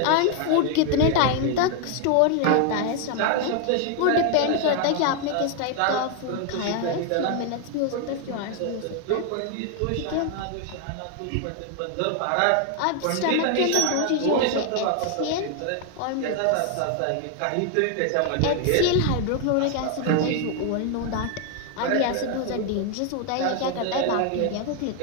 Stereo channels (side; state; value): both; different; correlation 0.00